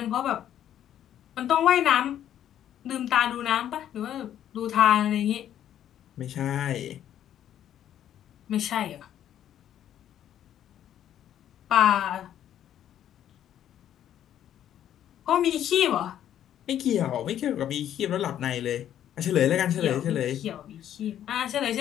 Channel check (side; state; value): right; quieter; 10.8 dB